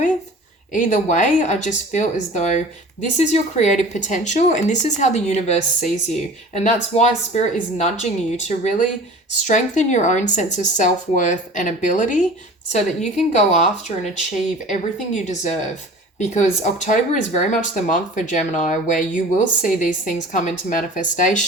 Either way, I just feel as though this is your creative potential and this is how the universe sees you. And that's why Spirit is nudging you to really strengthen your own sense of self-worth and ability so that you can go after and achieve everything you deserve. Because October is very much the month for Gemini where you will see these things come into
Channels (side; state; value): both; normal; correlation 0.41